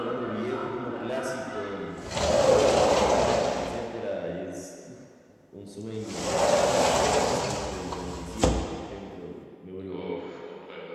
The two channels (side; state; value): both; identical; correlation 1.00